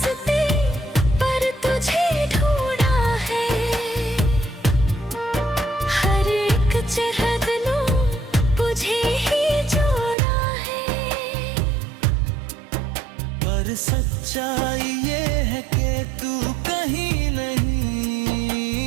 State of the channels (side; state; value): left; drops out; at 10.2 s